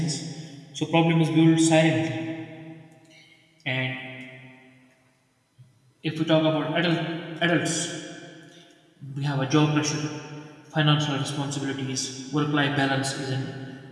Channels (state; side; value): identical; both; correlation 1.00